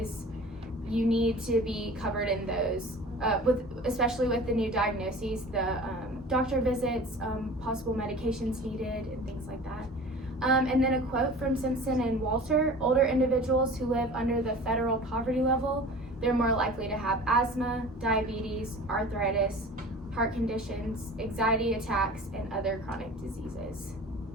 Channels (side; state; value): both; normal; correlation 0.40